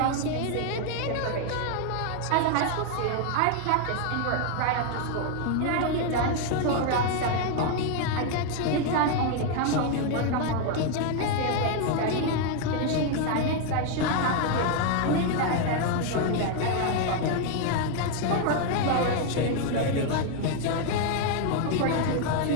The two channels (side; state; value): both; different; correlation 0.00